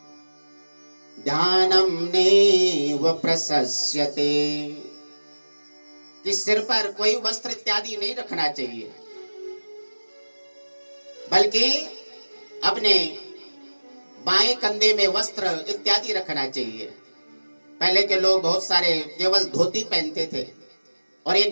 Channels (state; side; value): inverted; both; correlation -1.00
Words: ध्यानम नैव प्रशस्यते, कि सिर पर कोई वस्त्र इत्यादि नहीं रखना चाहिए, बल्कि अपने बाएं कंधे में वस्त्र इत्यादि रखना चाहिए। पहले के लोग बहुत सारे केवल धोती पहनते थे और